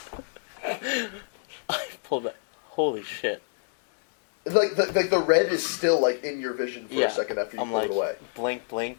I pulled that. Holy shit. Like the red is still like in your vision for Yeah. a second after you I'm pull like, it away.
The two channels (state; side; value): silent; right; digital silence